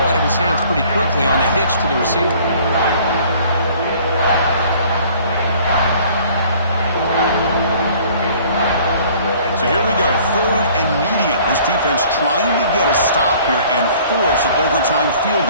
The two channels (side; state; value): both; inverted; correlation -0.54